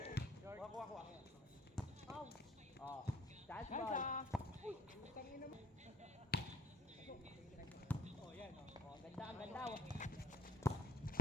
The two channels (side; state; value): both; normal; correlation 0.68